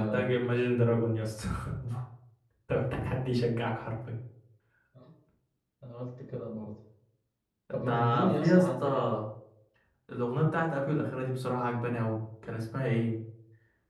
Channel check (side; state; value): both; identical; correlation 1.00